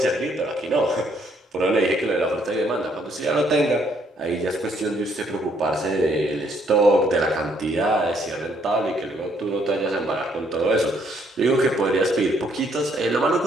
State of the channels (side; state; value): both; normal; correlation 0.68